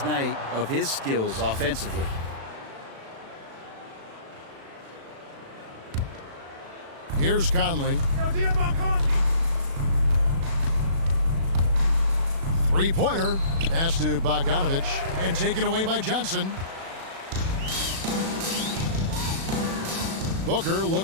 night of his skills offensively. Here's Conley. 3-pointer. Pass to Bogdanovich. And taken away by Johnson. Booker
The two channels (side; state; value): left; late; 36 ms